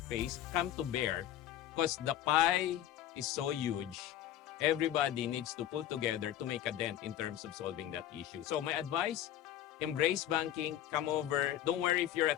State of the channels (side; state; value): right; quieter; 11.9 dB